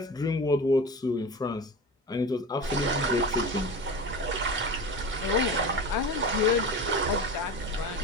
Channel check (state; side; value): normal; both; correlation 0.30